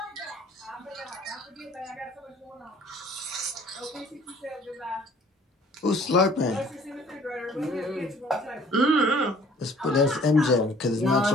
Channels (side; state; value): both; normal; correlation 0.55